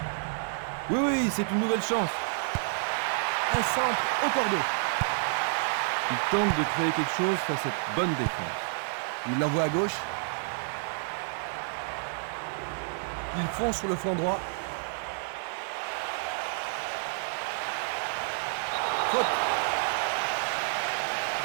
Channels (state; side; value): silent; left; digital silence